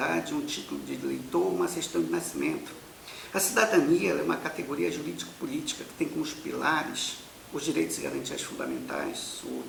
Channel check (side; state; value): both; identical; correlation 1.00